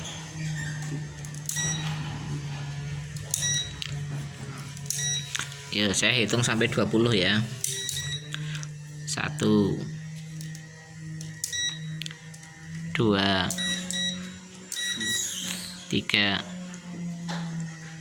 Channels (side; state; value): both; identical; correlation 1.00